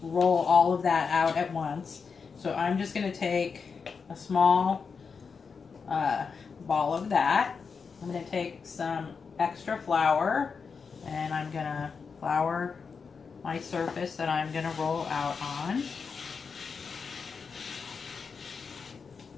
roll all of that out at once. So I'm just going to take a small ball of that. I'm going to take some extra flour, and I'm going to flour my surface that I'm going to roll out on.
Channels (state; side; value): quieter; right; 5.5 dB